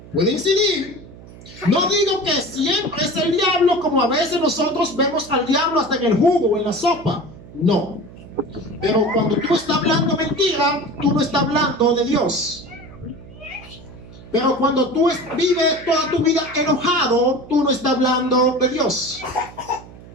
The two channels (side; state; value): right; noise; hum, 19 dB below the sound